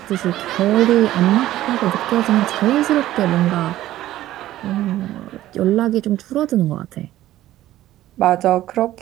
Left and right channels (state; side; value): quieter; left; 14.3 dB